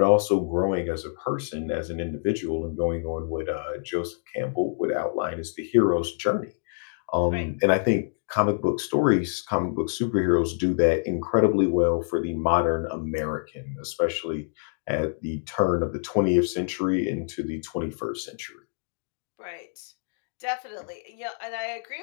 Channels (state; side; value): silent; right; digital silence